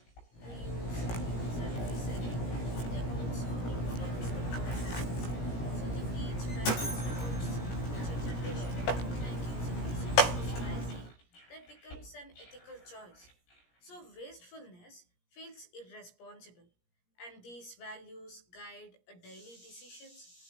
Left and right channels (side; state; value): right; late; 17 ms